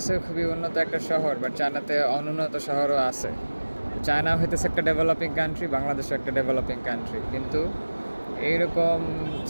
খুবই উন্নত একটা শহর, বাট চায়নাতে অনুন্নত শহরও আছে। চায়না হইতেছে একটা ডেভেলপিং কান্ট্রি, বাংলাদেশও একটা ডেভেলপিং কান্ট্রি, কিন্তু এইরকম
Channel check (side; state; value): both; inverted; correlation -1.00